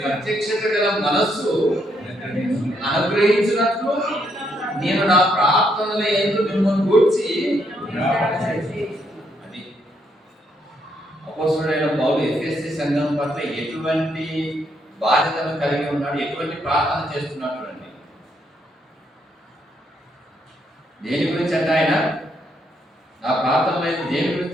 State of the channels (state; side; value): normal; both; correlation 0.75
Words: ప్రత్యక్షత గల మనస్సు అనుగ్రహించినట్లు నేను నా ప్రార్థనల యందు మిమ్మల్ని గూర్చి అది అపొస్తలుడైన పౌలు ఎఫెసీ సంఘం పట్ల ఎటువంటి బాధ్యతను కలిగి ఉన్నాడు, ఎటువంటి ప్రార్థన చేస్తున్నాడు అండి. దేని గురించి అంటే ఆయన ఆ ప్రార్థనలో దేని